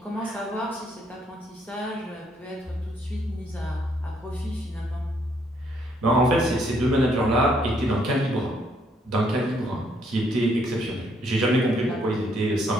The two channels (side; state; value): both; normal; correlation 0.70